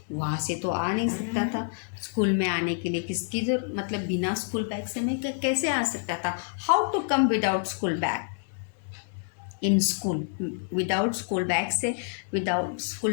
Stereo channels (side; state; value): right; silent; 60 dB below the other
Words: वहाँ से तो आ नहीं सकता था। स्कूल में आने के लिए किसकी जरूरत, मतलब बिना स्कूल बैग से मैं कैसे आ सकता था। How to come without school bag in school, without school bag से, विदाउट